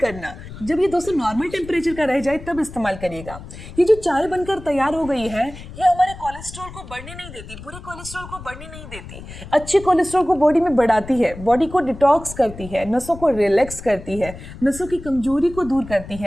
जब ये दोस्तों नॉर्मल टेम्परेचर का रह जाए तब इस्तेमाल करिएगा। ये जो चाय बनकर तैयार हो गई है, ये हमारे कोलेस्ट्रॉल को बढ़ने नहीं देती, बुरे कोलेस्ट्रॉल को बढ़ने नहीं देती, अच्छे कोलेस्ट्रॉल को बॉडी में बढ़ाती है, बॉडी को डिटॉक्स करती है, नसों को रिलैक्स करती है, नसों की कमजोरी को दूर करती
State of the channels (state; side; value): noise; left; rumble, 14 dB below the sound